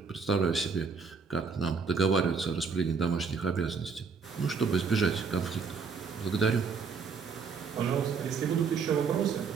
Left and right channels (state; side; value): quieter; left; 5.3 dB